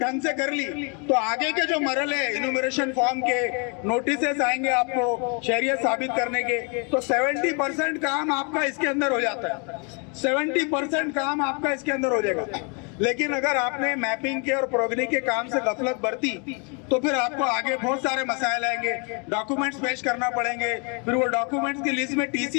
ढंग से कर ली तो आगे के जो मरहले इन्यूमरेशन फॉर्म के नोटिसेस आएंगे आपको शहरियत साबित करने के, तो 70% काम आपका इसके अंदर हो जाता है। 70% काम आपका इसके अंदर हो जाएगा। लेकिन अगर आपने मैपिंग के और प्रोगनी के काम से गफलत बरती तो फिर आपको आगे बहुत सारे मसाइल आएंगे, डॉक्यूमेंट्स पेश करना पड़ेंगे। फिर वो डॉक्यूमेंट्स की लिस्ट में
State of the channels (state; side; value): quieter; right; 34.9 dB